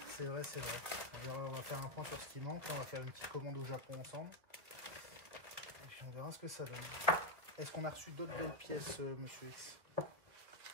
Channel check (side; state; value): left; late; 1.5 ms